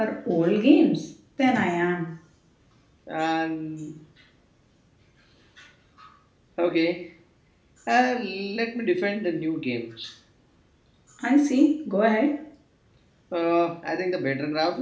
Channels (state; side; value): identical; both; correlation 1.00